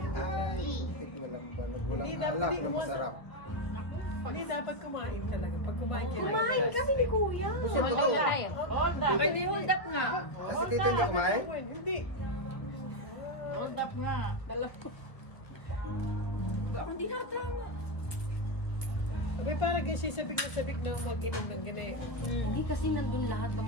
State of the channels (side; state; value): right; late; 1.1 ms